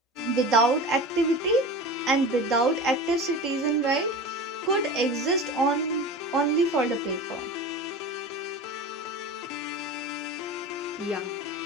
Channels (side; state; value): both; normal; correlation 0.32